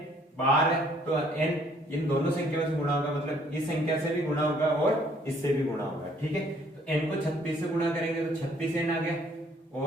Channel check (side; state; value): both; normal; correlation 0.62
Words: बाहर है तो n इन दोनों संख्याओं से गुणा होगा, मतलब इस संख्या से भी गुणा होगा और इससे भी गुणा होगा, ठीक है। तो n को 36 से गुणा करेंगे तो 36n आ गया,